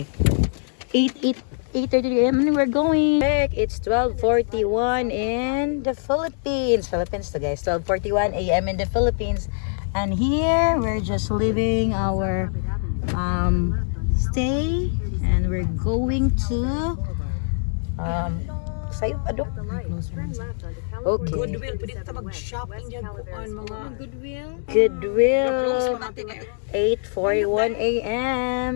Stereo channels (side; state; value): right; silent; digital silence